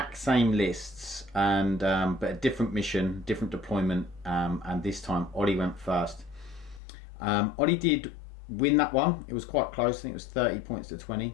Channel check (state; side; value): drops out; right; at 6.8 s